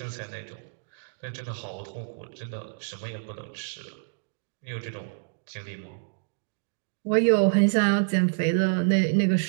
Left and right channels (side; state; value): left; silent; digital silence